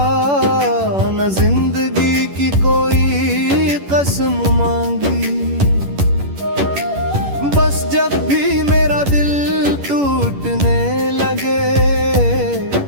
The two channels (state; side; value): late; left; 11 ms